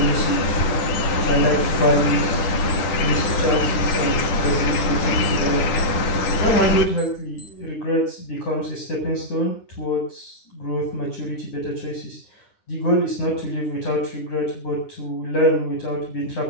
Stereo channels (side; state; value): right; late; 9.7 ms